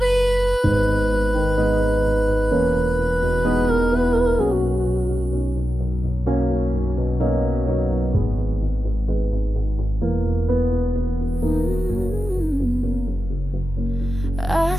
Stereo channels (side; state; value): both; normal; correlation 0.92